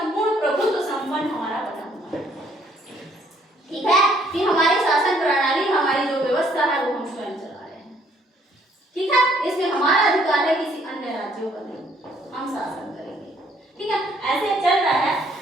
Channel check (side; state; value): both; normal; correlation 0.65